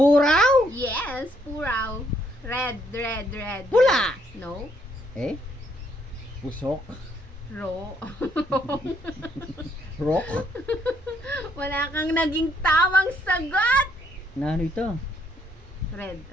Yes, puraw. Red. Pula. No. Pusok. Ro. Rock. Wala kang naging tamang sagot! Na ano ito? Red,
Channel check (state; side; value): normal; both; correlation 0.70